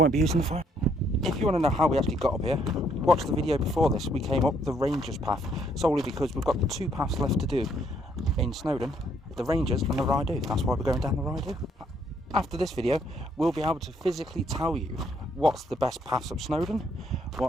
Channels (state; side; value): normal; both; correlation 0.69